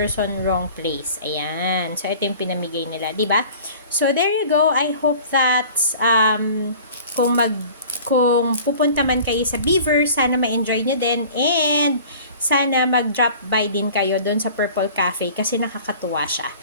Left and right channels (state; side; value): inverted; both; correlation -0.45